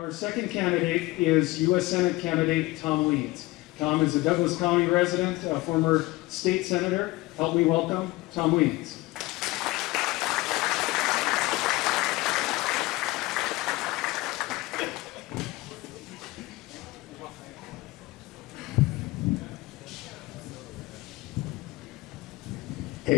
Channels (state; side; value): quieter; right; 20.6 dB